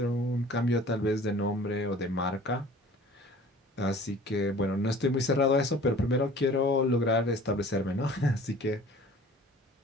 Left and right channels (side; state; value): both; normal; correlation 0.47